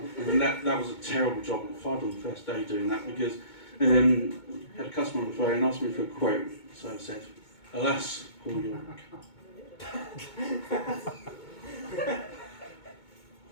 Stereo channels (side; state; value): right; late; 2.2 ms